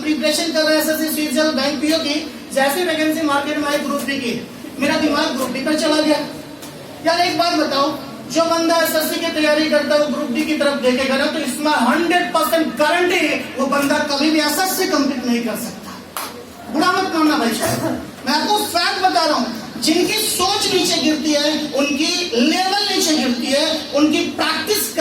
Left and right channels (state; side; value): identical; both; correlation 1.00